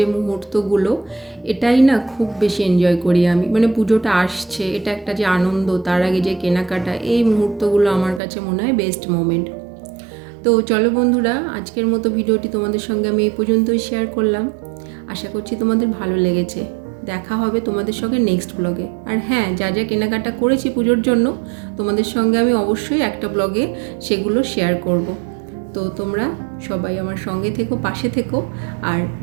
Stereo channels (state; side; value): drops out; left; at 8.2 s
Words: মুহূর্তগুলো, এটাই না খুব বেশি এনজয় করি আমি। মানে পুজোটা আসছে, এটা একটা যে আনন্দ, তার আগে যে কেনাকাটা, এই মুহূর্তগুলো আমার কাছে মনে হয় বেস্ট মোমেন্ট। তো চলো বন্ধুরা, আজকের মতো ভিডিওটি তোমাদের সঙ্গে আমি এই পর্যন্তই শেয়ার করলাম। আশা করছি তোমাদের ভালো লেগেছে। দেখা হবে তোমাদের সঙ্গে নেক্সট ব্লগে। আর হ্যাঁ, যা যা কেনাকাটা করেছি পুজোর জন্য তোমাদের সঙ্গে আমি অবশ্যই একটা ব্লগে সেগুলো শেয়ার করব। তো তোমরা সবাই আমার সঙ্গে থেকো, পাশে থেকো, আর